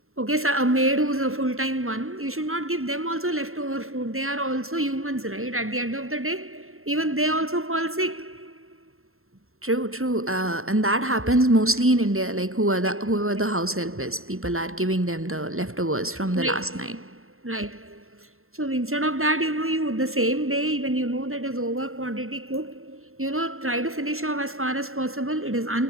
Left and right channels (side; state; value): left; late; 0.62 ms